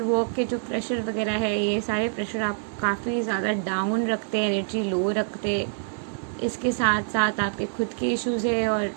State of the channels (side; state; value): left; silent; digital silence